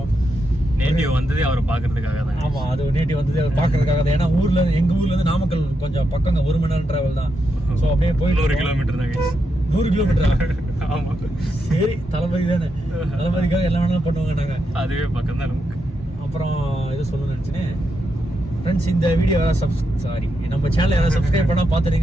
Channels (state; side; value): normal; both; correlation 0.84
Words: நேட்டிவ் வந்ததே அவர் பார்க்கறதுக்காக தான். ஆமாம், அது நேட்டிவ் வந்ததே அவர் பார்க்கறதுக்காக தான். ஏன்னா எங்கள் ஊர்லேருந்து நாமக்கல் கொஞ்சம் பக்கங்க, 1 மணி நேரம் டிராவல் தான். ஸோ அப்படியே போயிட்டு 100 கிலோமீட்டர் தான். 100 கிலோமீட்டரா? ஆமா, சரி, தளபதி தானே, தளபதிக்காக எல்லாம் வேணாலும் பண்ணுவாங்க. நாங்கள் அதுவே பக்கம் தான் நமக்கு. அப்புறம் இது சொல்லணும்னு நினச்சினேன் ஃப்ரெண்ட்ஸ், இந்த வீடியோ நம்ம சேனல் யாராவது சப்ஸ்கிரைப் பண்ணா